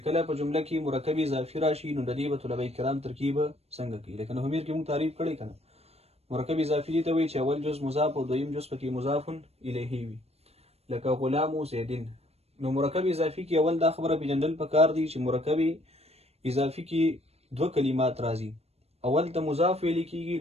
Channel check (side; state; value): left; late; 0.30 ms